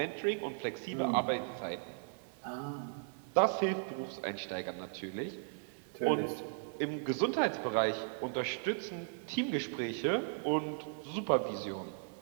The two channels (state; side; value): silent; left; digital silence